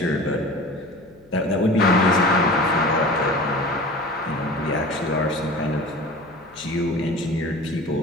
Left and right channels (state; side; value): noise; left; hum, 29 dB below the sound